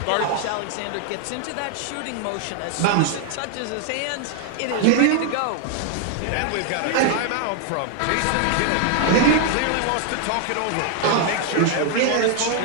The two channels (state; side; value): different; both; correlation 0.00